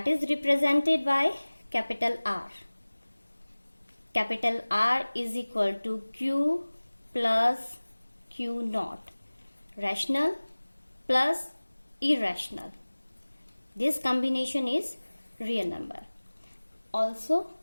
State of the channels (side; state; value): both; inverted; correlation -1.00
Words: is represented by capital R. Capital R is equal to Q plus Q naught, rational plus irrational. This combination is real number. Also,